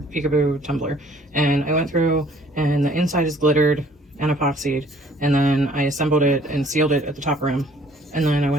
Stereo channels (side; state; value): both; normal; correlation 0.58